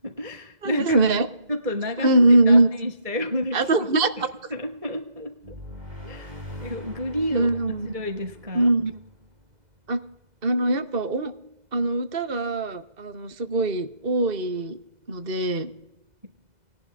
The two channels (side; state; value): left; late; 2.0 ms